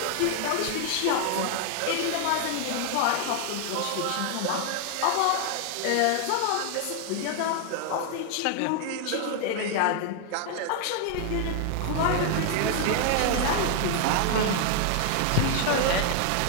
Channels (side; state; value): both; different; correlation 0.00